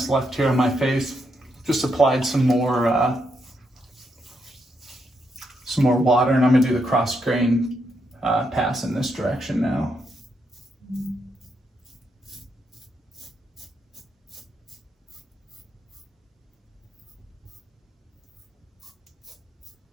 left here on my face. Just applied some more water, and I'm going to do the cross grain pass in this direction now.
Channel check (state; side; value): normal; both; correlation 0.80